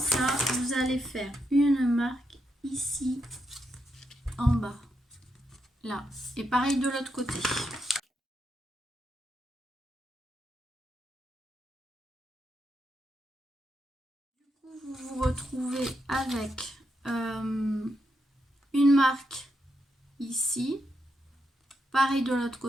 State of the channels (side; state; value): both; normal; correlation 0.82